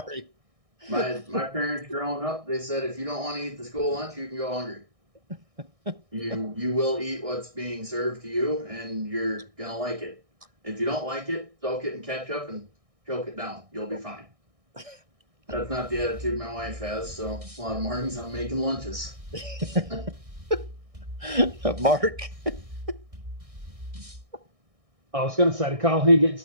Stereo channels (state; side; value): late; left; 1.6 ms